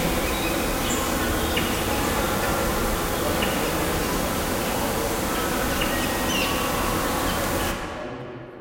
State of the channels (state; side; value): identical; both; correlation 1.00